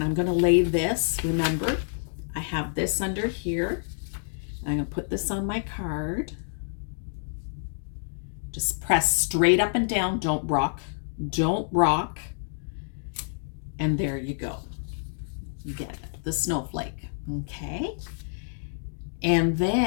I'm going to lay this, remember, I have this under here. I'm going to put this on my card. Just press straight up and down. Don't rock. Don't rock. And there you go. You get it, the snowflake. Okay. And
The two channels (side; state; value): right; silent; digital silence